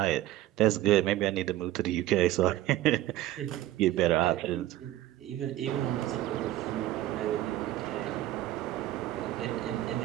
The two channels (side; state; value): left; quieter; 14.7 dB